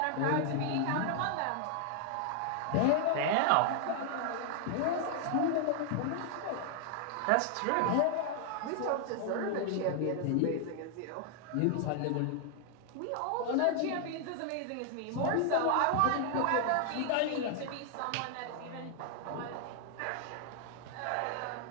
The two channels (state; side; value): different; both; correlation 0.00